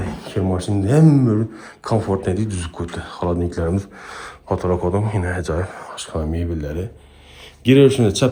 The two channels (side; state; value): both; identical; correlation 1.00